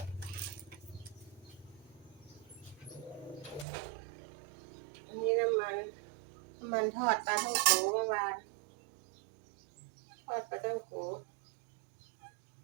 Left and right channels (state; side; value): drops out; left; at 3.7 s